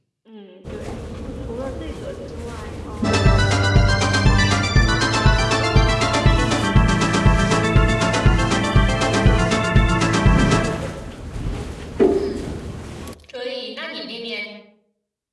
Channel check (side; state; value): both; identical; correlation 1.00